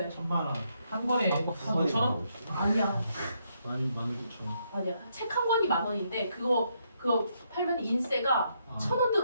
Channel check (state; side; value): inverted; both; correlation -0.76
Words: 1000만 원. 한 권에 5,000원? 아니야. 19,000원. 아니야. 책 한 권이 10,000원인데 그거 팔면 인세가 1,000원